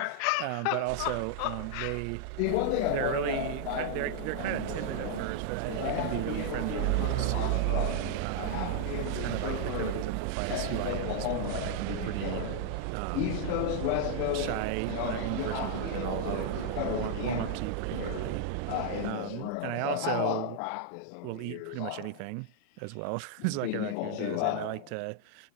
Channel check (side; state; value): both; different; correlation 0.00